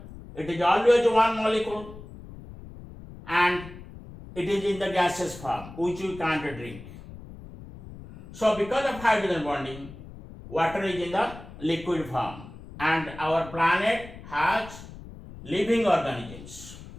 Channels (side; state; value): left; noise; rumble, 16 dB below the sound